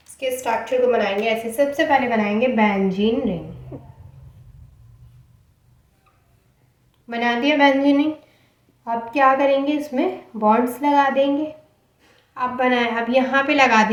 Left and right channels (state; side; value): identical; both; correlation 1.00